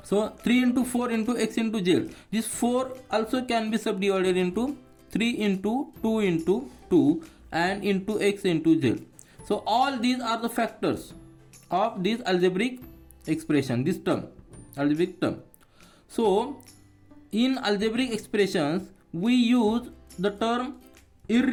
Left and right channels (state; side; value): identical; both; correlation 1.00